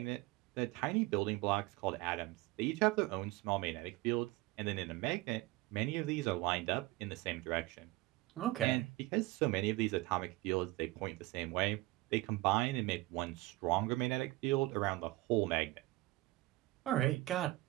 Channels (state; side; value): quieter; left; 20.0 dB